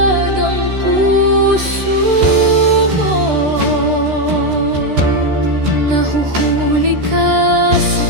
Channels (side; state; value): left; late; 13 ms